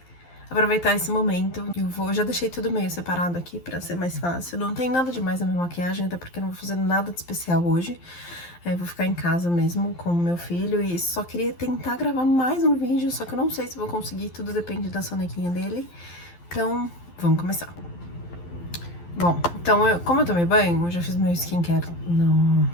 aproveitar esse momento. Eu já deixei tudo meio separado aqui pra ser mais fácil. Não tem nada demais na minha maquiagem, até porque eu não vou fazer nada de especial hoje. Vou ficar em casa mesmo com o meu filho e só queria tentar gravar mais um vídeo, só que eu não sei se vou conseguir, tudo depende da sonequinha dele. Então, vamos começar. Bom, então, como eu tomei banho, eu já fiz meu skincare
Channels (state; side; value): late; right; 12 ms